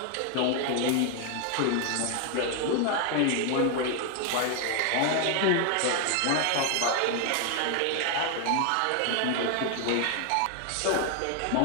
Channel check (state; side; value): different; both; correlation 0.00